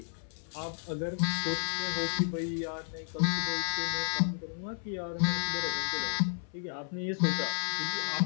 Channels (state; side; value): silent; right; 56 dB below the other